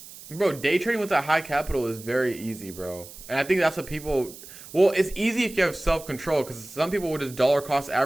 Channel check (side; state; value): right; noise; hiss, 17 dB below the sound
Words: Bro, day trading with that high capital is very easy, bro. And I think that's what people. Well, it's easy if you have self control, because some people will just dollar cost